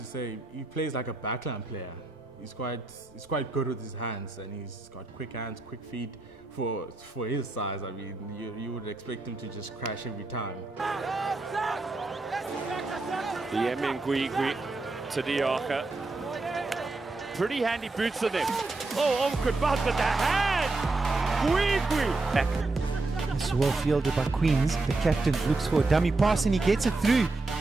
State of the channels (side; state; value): left; quieter; 3.3 dB